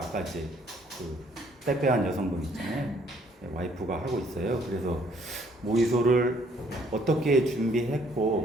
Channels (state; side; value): normal; both; correlation 0.64